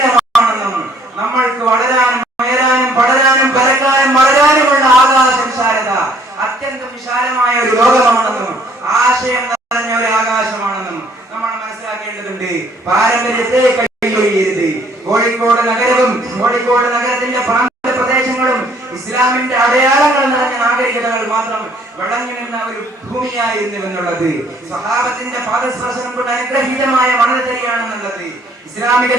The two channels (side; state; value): both; normal; correlation 0.62